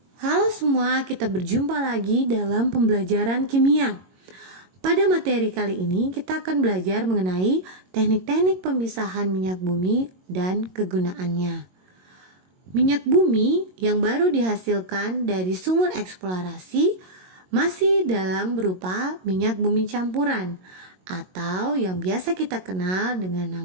Halo semua, kita berjumpa lagi dalam pembelajaran kimia. Pada materi kali ini kita akan belajar mengenai teknik-teknik pemisahan minyak bumi dan kegunaannya. Minyak bumi yang baru dihasilkan dari sumur eksplorasi masih dalam berupa minyak bumi campuran atau yang biasa kita kenal dengan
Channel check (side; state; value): left; late; 22 ms